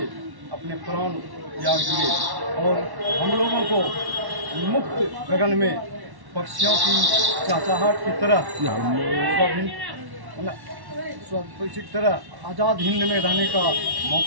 अपने प्राण त्याग दिए और हम लोगों को मुक्त गगन में पक्षियों की चहचहाहट की तरह आज़ाद हिंद में रहने का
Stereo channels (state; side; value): late; left; 1.1 ms